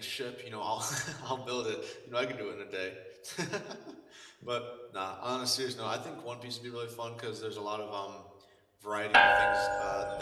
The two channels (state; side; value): identical; both; correlation 1.00